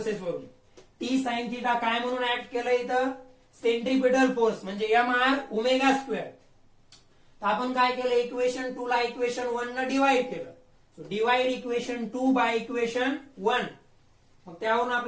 वरून. टी साइन थिटा काय म्हणून ऍक्ट केलं इथं, सेंट्रिपिटल फोर्स म्हणजे एम आर ओमेगा स्क्वेअर. तर आपण काय केलं, इक्वेशन 2 ला इक्वेशन 1 न डिवाइड केलं. So divide equation 2 by equation 1. मग त्यावरून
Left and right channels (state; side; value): identical; both; correlation 1.00